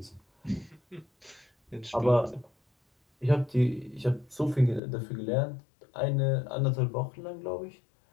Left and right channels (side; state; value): right; drops out; at 4.8 s